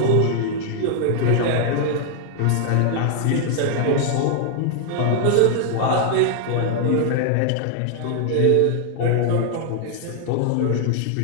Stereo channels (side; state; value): both; different; correlation 0.00